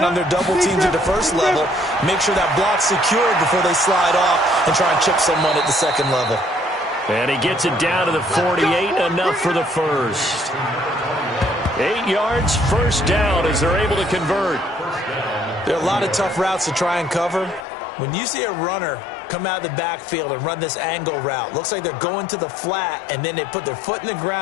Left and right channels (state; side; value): drops out; right; at 17.7 s